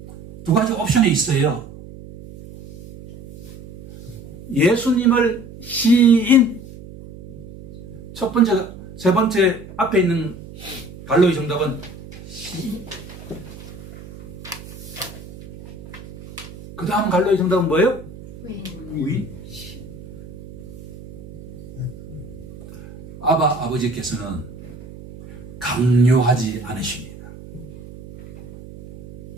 두 가지 옵션이 있어요. 예수님을 시인, 첫 번째, 세 번째 앞에 있는 갈로의 정답은 시인. 그 다음 갈로의 정답은 뭐예요? 부인. 아버지께서는 강요하지 않으십니다.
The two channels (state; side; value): noise; right; hum, 16 dB below the sound